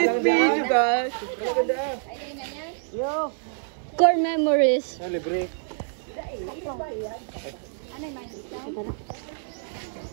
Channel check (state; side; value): silent; left; 61 dB below the other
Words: video guys. Core memories. Libre.